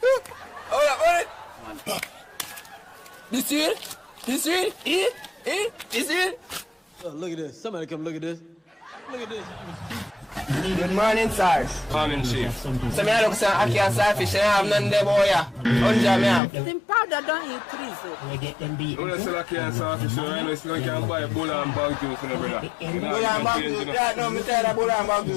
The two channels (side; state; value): right; drops out; at 16.4 s